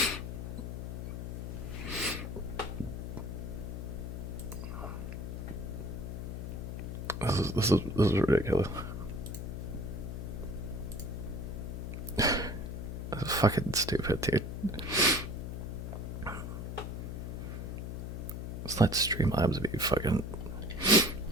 This is ridiculous. This is fucking stupid, dude. Let's let Streamlabs be fucking.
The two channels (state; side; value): noise; left; hum, 5 dB below the sound